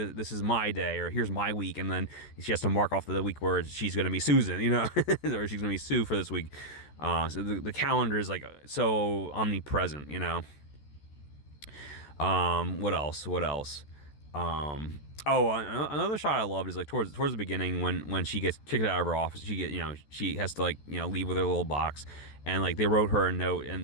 is my day, or here's my week, and then she has to mark off the week where she's going to be Susan, you know, or she's going to be Sue for this week. So the calendar is like so omnipresent, you know. What else? Oh, another shot I loved is like towards the beginning when she gets kicked out of her office. She has to, like, you know, leave with her little box, and like they wrote her a note,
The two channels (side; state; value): right; late; 14 ms